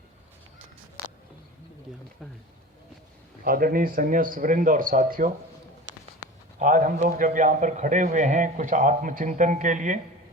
आदरणीय संन्यास वृंद और साथियों, आज हम लोग जब यहाँ पर खड़े हुए हैं कुछ आत्मचिंतन के लिए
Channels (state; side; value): normal; both; correlation 0.35